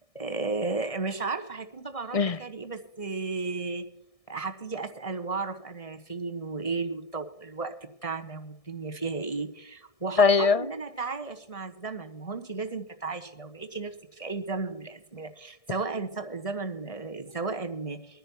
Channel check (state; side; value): late; right; 1.6 ms